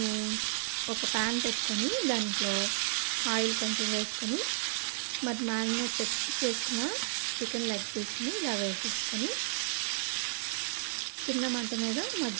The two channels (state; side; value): silent; left; 56 dB below the other